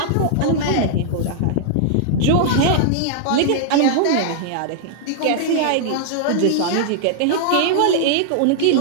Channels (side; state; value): both; different; correlation -0.01